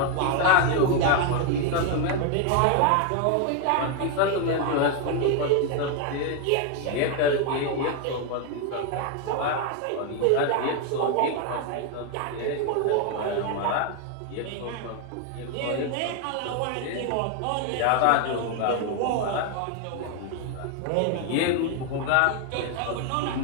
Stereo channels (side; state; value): both; different; correlation 0.01